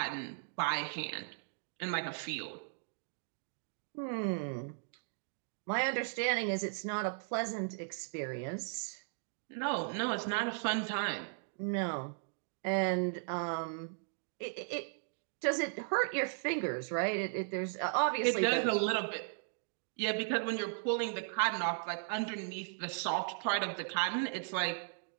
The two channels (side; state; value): left; silent; digital silence